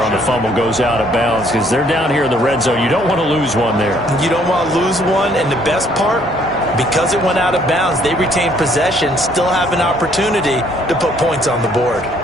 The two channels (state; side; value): normal; both; correlation 0.64